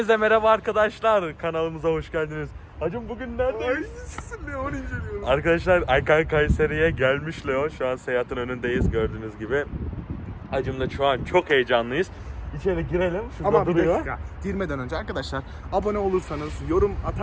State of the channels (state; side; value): identical; both; correlation 1.00